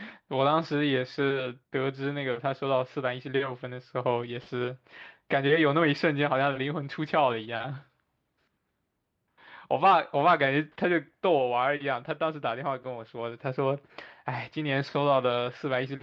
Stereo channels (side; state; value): both; identical; correlation 1.00